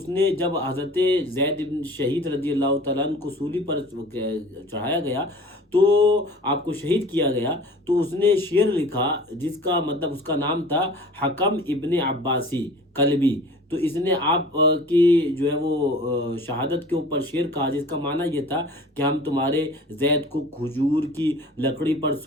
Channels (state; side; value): normal; both; correlation 0.44